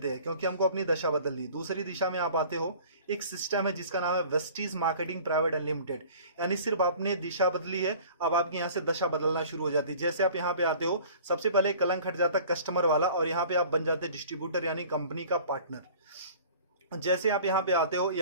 हैं, क्योंकि हमको अपनी दशा बदलनी। दूसरी दिशा में आप आते हो, एक सिस्टम है जिसका नाम है वेस्टीज मार्केटिंग प्राइवेट अनलिमिटेड। यानी सिर्फ आपने दिशा बदली है, अब आपकी यहाँ से दशा बदलना शुरू हो जाती है। जैसे आप यहाँ पे आते हो, सबसे पहले कलंक हट जाता है कस्टमर वाला, और यहाँ पे आप बन जाते हैं डिस्ट्रीब्यूटर, यानी कंपनी का पार्टनर। जैसे आप यहाँ पे आते हो,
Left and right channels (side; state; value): both; inverted; correlation -0.47